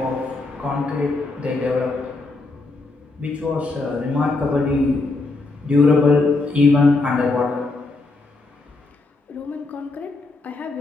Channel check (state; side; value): quieter; right; 3.4 dB